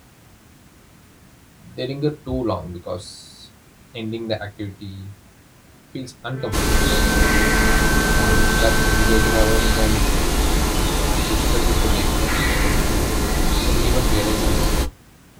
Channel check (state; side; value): identical; both; correlation 1.00